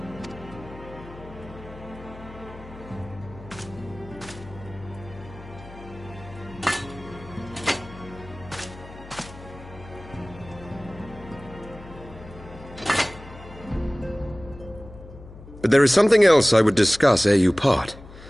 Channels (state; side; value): noise; left; hum, 17 dB below the sound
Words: But there is something else I would discuss ere you part.